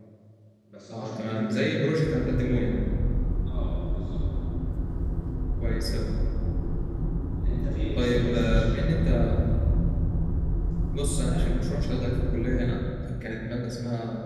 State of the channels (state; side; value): identical; both; correlation 1.00